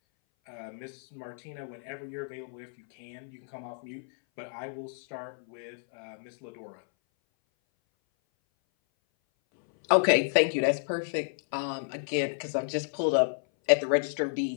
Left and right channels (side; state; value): right; silent; 57 dB below the other